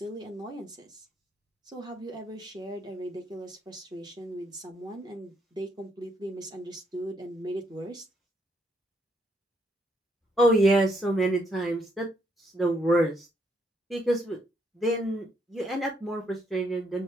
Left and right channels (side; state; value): both; normal; correlation 0.73